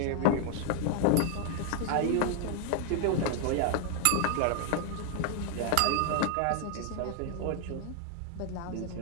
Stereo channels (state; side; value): different; both; correlation 0.00